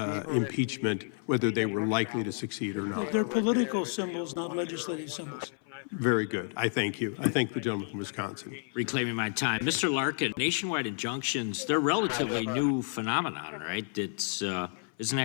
impeachment, whether they were likely to succeed or not. They're political symbols, not legislative symbols. Very good. I thank you. I thank the gentleman from Wisconsin. Reclaiming my time. Mr. Larkin, nationwide injunctions, they're relatively new phenomenon, right? It's, isn't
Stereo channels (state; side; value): silent; right; 56 dB below the other